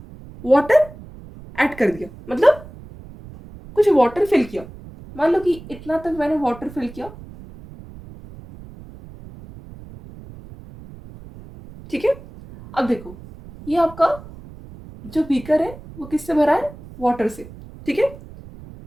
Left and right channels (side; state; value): right; noise; rumble, 17 dB below the sound